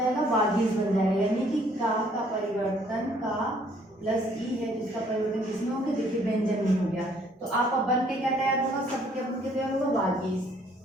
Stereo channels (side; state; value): both; normal; correlation 0.63